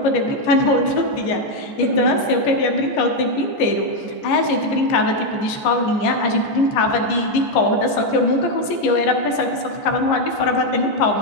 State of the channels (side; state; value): right; late; 14 ms